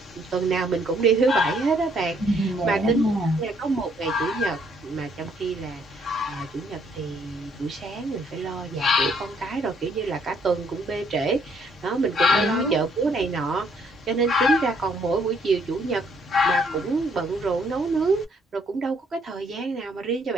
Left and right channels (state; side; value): normal; both; correlation 0.67